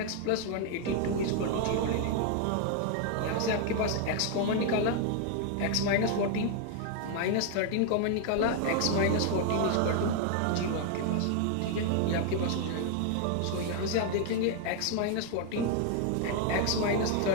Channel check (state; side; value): different; both; correlation 0.00